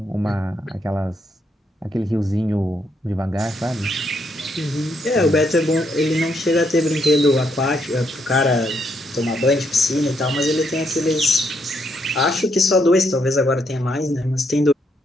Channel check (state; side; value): normal; both; correlation 0.75